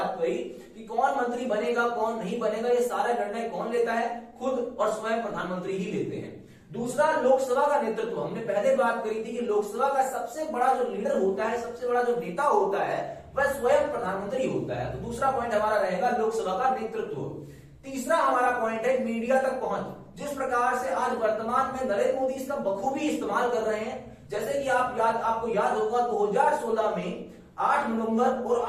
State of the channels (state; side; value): identical; both; correlation 1.00